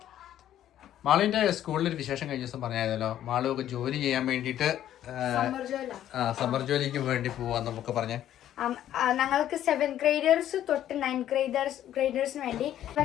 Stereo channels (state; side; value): quieter; right; 11.7 dB